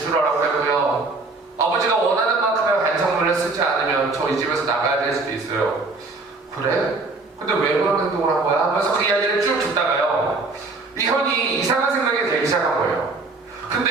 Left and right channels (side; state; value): left; quieter; 3.6 dB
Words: 하고요, 아버지가 원하는 만큼의 반성문을 쓰지 않으면 저 이 집에서 나가야 될 수도 있어요. 그래? 근데 왜 그런 행동을 한 거야? 하면서 그 이야기를 쭉 듣다가요, 이 형이 이상한 생각이 들기 시작한 거예요.